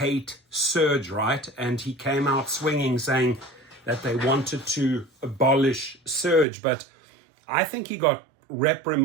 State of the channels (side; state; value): left; drops out; at 6.5 s